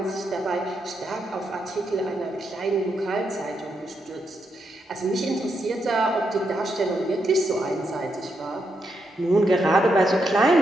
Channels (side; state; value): both; normal; correlation 0.81